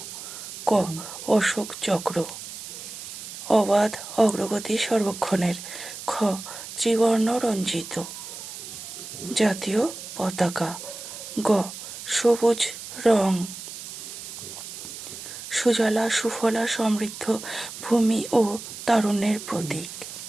ক. অশোক চক্র। অবাধ অগ্রগতি সর্বক্ষণের। খ. ত্রিবর্ণ রঞ্জিত জাতীয় পতাকা। গ. সবুজ রং সুজলা সুফলা সমৃদ্ধ ভূমি ও তারুণ্যের প্রতীক।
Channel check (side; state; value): right; noise; hiss, 11 dB below the sound